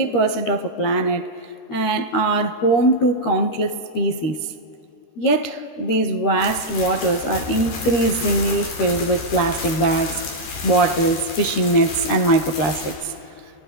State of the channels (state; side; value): late; right; 13 ms